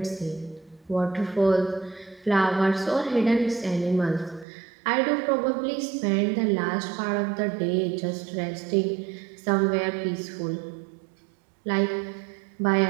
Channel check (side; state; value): left; drops out; at 4.5 s